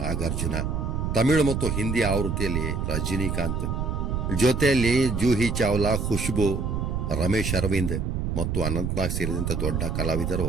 ನಾಗಾರ್ಜುನ, ತಮಿಳು ಮತ್ತು ಹಿಂದಿ ಆವೃತ್ತಿಯಲ್ಲಿ ರಜನಿಕಾಂತ್, ಜೊತೆಯಲ್ಲಿ ಜೂಹಿ ಚಾವ್ಲಾ, ಖುಷ್ಬು, ರಮೇಶ್ ಅರವಿಂದ್ ಮತ್ತು ಅನಂತ್ನಾಗ್ ಸೇರಿದಂತೆ ದೊಡ್ಡ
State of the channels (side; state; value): right; noise; rumble, 1 dB below the sound